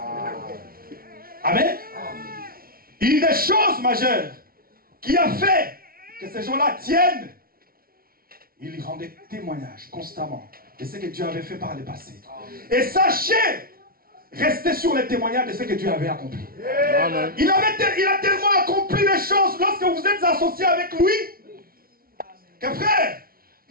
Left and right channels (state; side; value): late; left; 0.43 ms